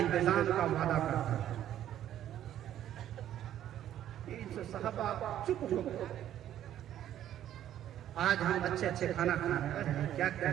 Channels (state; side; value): quieter; left; 11.5 dB